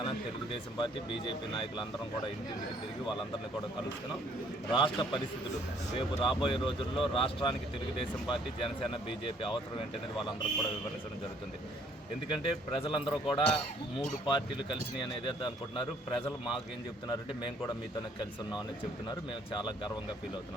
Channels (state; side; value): normal; both; correlation 0.62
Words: తెలుగుదేశం పార్టీ, బీజేపీ నాయకులు అందరం కూడా ఇంటింటికి తిరిగి వాళ్ళందరినీ కూడా కలుస్తున్నాం. రాష్ట్ర పరిస్థితులు రేపు రాబోయే రోజుల్లో రాష్ట్రానికి తెలుగుదేశం పార్టీ, జనసేన, బీజేపీ అవసరం ఏంటనేది వాళ్ళందరూ కూడా వివరించడం జరుగుతుంది. ఎందుకంటే ప్రజలందరూ కూడా 3 పార్టీలు కలిసినాయి అనేది అనుకుంటున్నారు. ప్రజలు మాకేం చెప్తున్నారంటే మేము కూడా మీతోనే కలిసి ఉన్నాం అనేది చెప్తున్నారు. మేము చాలా గర్వంగా ఫీల్